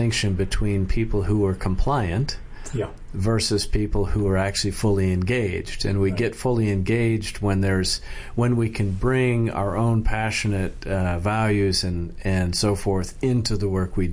between people who are compliant versus people who are actually fully engaged. And we get fully engaged when we can bring our own passionate values and so forth into the work we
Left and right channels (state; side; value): identical; both; correlation 1.00